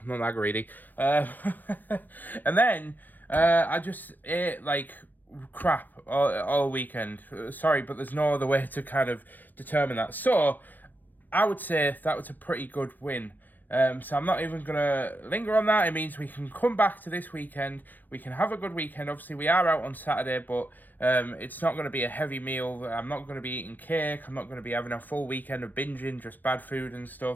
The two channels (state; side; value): late; right; 0.089 ms